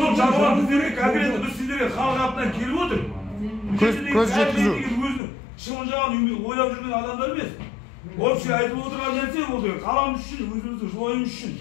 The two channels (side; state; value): right; drops out; at 5.2 s